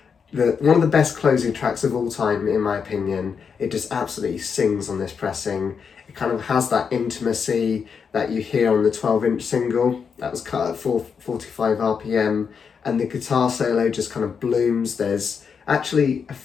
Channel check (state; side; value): quieter; right; 6.3 dB